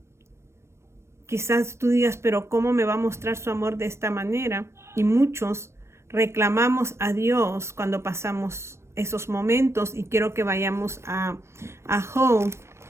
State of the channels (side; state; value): left; late; 0.13 ms